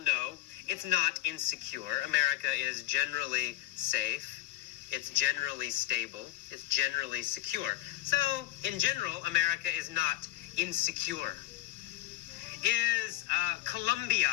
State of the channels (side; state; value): right; quieter; 15.3 dB